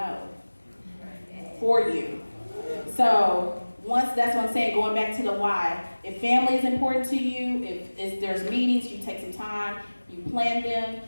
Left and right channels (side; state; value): both; inverted; correlation -1.00